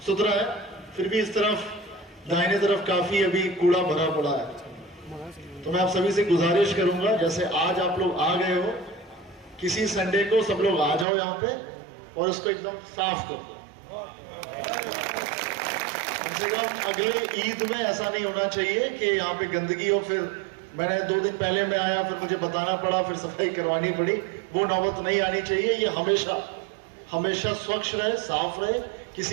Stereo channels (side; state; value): left; drops out; at 11.1 s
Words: सुथरा है, फिर भी इस तरफ दाहिने तरफ काफी अभी कूड़ा भरा पड़ा है। तो मैं आप सभी से गुजारिश करूंगा, जैसे आज आप लोग आ गए हो, किसी संडे को सब लोग आ जाओ यहाँ पे और इसको एकदम साफ कर दो। कम से कम अगले ईद में ऐसा नहीं होना चाहिए कि यहाँ पे गंदगी हो, फिर मैंने 2 दिन पहले मैं आया, फिर मुझे बताना पड़ा, फिर सफाई करवानी पड़ी। वो नौबत नहीं आनी चाहिए। ये हमेशा हमेशा स्वच्छ रहे, साफ रहे,